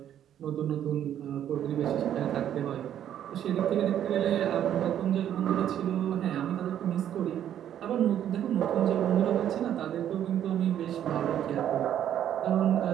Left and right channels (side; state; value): left; quieter; 10.4 dB